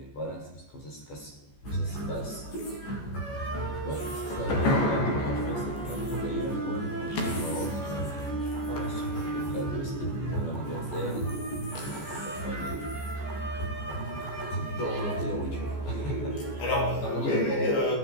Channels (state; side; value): late; right; 14 ms